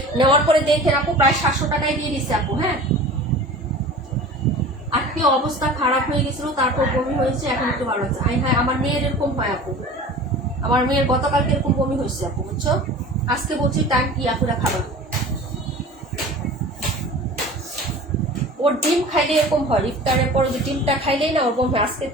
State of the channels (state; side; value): normal; both; correlation 0.39